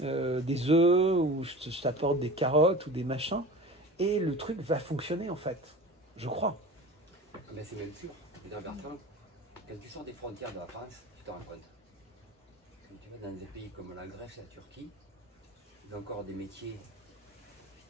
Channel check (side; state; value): both; normal; correlation 0.35